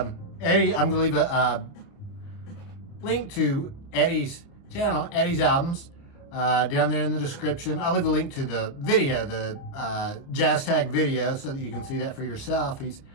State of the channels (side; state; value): right; late; 29 ms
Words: I'm going to leave a link to Eddie's channel, Eddie's Albums, down there in the description. I'll leave a link to the video, the jazz tag video, so that you can see that for yourself. He's